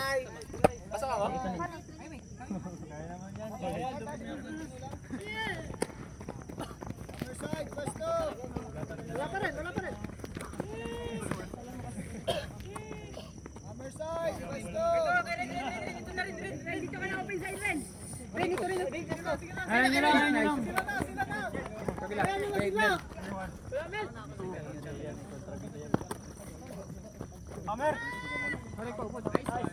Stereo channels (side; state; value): both; identical; correlation 1.00